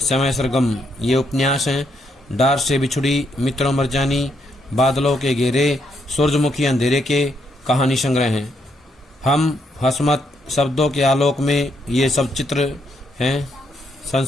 सरगम, ये उपन्यास हैं। डार से बिछुड़ी, मित्रों मरजानी, बादलों के घेरे, सूरजमुखी अंधेरे के कहानी संग्रह हैं। हम हसमत शब्दों के आलोक में ये सब चित्र हैं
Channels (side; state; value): both; normal; correlation 0.76